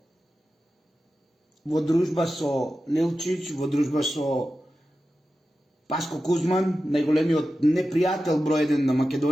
во дружба со Нелчич, во дружба со Паско Кузман, најголемиот непријател број 1 на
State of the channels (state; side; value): normal; both; correlation 0.93